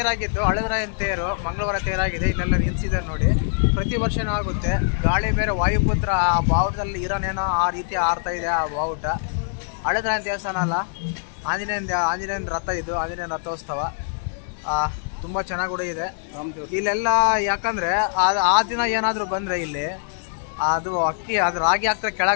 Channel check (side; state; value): right; silent; 63 dB below the other